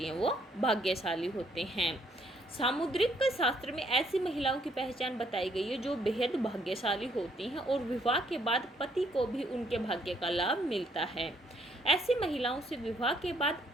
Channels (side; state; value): both; normal; correlation 0.69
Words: हैं वो भाग्यशाली होते हैं। सामुद्रिक शास्त्र में ऐसी महिलाओं की पहचान बताई गई है जो बेहद भाग्यशाली होती हैं और विवाह के बाद पति को भी उनके भाग्य का लाभ मिलता है। ऐसी महिलाओं से विवाह के बाद